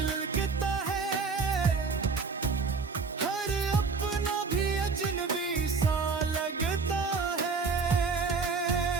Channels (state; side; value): quieter; left; 4.7 dB